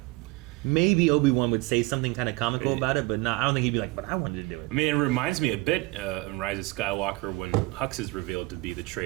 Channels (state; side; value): quieter; left; 22.4 dB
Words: Maybe Obi-Wan would say something kind of comical about it, but not. I don't think he'd be like, but I wanted to do it. I mean, it reminds me a bit in Rise of Skywalker when Hux is revealed to be the